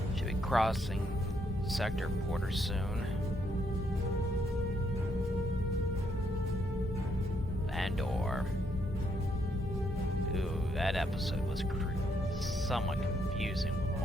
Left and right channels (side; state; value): both; normal; correlation 0.74